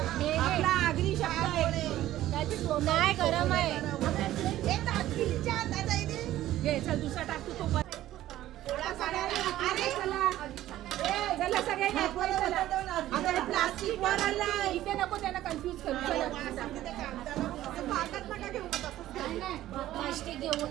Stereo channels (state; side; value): quieter; left; 14.1 dB